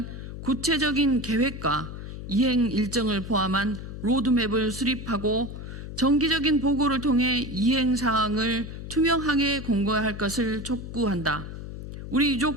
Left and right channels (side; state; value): left; noise; hum, 9 dB below the sound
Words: 구체적인 계획과 이행 일정을 포함한 로드맵을 수립하고 정기적인 보고를 통해 이행 사항을 투명하게 공개할 것을 촉구한다. 우리